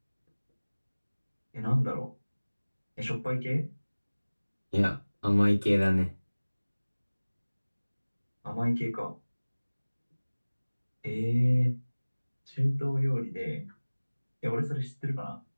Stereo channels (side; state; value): both; inverted; correlation -1.00